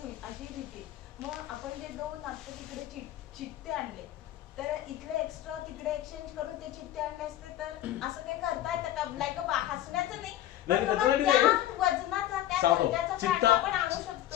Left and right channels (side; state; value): right; quieter; 13.3 dB